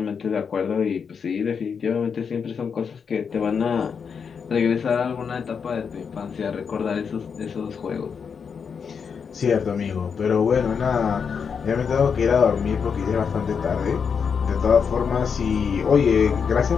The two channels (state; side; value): quieter; right; 6.3 dB